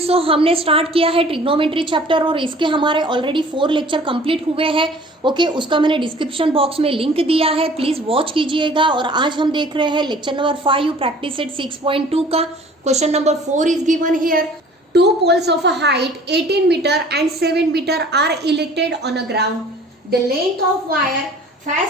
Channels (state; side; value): normal; both; correlation 0.49